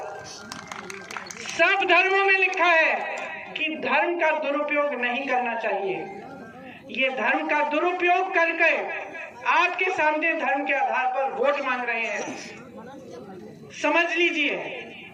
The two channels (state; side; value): identical; both; correlation 1.00